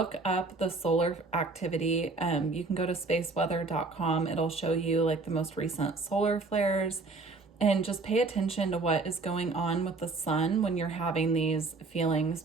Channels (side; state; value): left; quieter; 3.7 dB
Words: up the solar activity. You can go to spaceweather.com. It'll show you like the most recent solar flares, and just pay attention to what is going on with the sun when you're having these feelings,